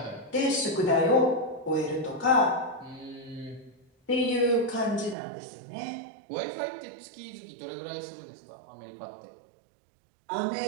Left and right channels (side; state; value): left; drops out; at 5.2 s